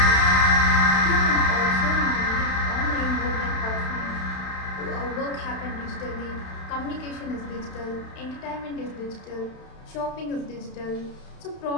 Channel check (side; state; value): right; late; 32 ms